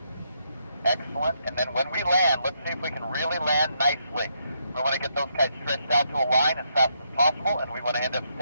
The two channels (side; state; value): both; inverted; correlation -0.77